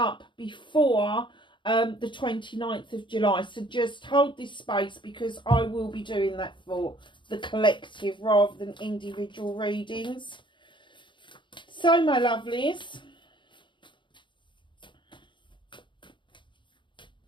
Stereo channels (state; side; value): late; right; 0.23 ms